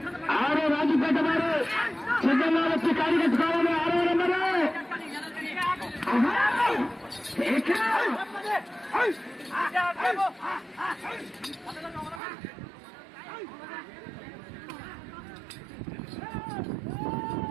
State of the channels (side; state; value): left; drops out; at 12.2 s